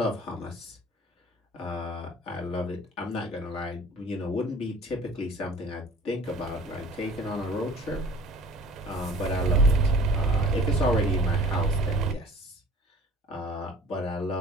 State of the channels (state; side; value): normal; both; correlation 0.48